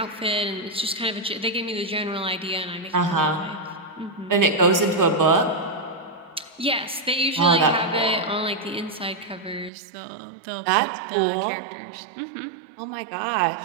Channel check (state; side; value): drops out; left; at 9.7 s